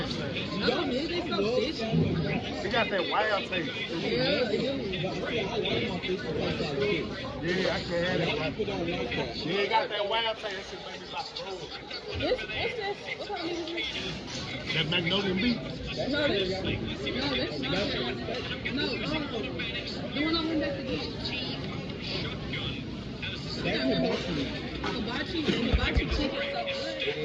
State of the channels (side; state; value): both; identical; correlation 1.00